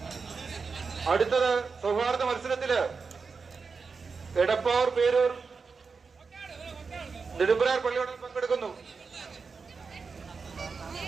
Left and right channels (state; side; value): quieter; left; 4.9 dB